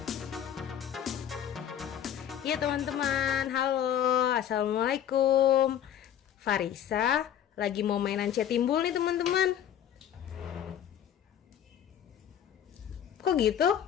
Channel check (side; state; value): right; quieter; 9.9 dB